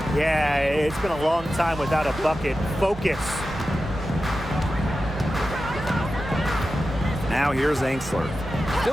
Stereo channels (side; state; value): both; normal; correlation 0.92